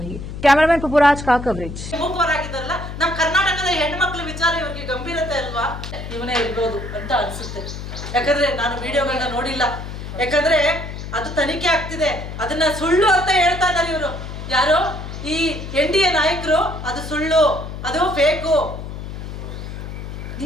कैमरामैन पपुराज का कवरेज। ಗಂಭೀರತೆ ಅಲ್ವಾ ಇವನೇ ಇರಬಹುದು ಅಂತ ಅನ್ಸುತ್ತೆ। ಯಾಕಂದ್ರೆ ನಾನು ವಿಡಿಯೋಗಳನ್ನ ನೋಡಿಲ್ಲ, ಯಾಕಂದ್ರೆ ಅದು ತನಿಖೆ ಆಗ್ತಿದೆ, ಅದನ್ನ ಸುಳ್ಳು ಅಂತ ಹೇಳ್ತಾ ಇದ್ದಾರೆ ಇವರು ಯಾರು ಈ ಎನ್ಡಿಎ ನಾಯಕರು, ಅದು ಸುಳ್ಳು, ಅದು ಫೇಕು।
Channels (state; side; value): noise; left; hum, 8 dB below the sound